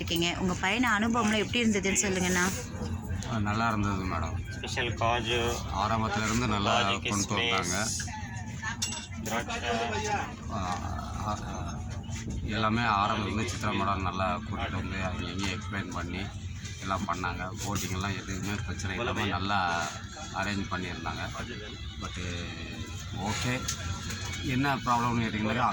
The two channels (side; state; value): both; identical; correlation 1.00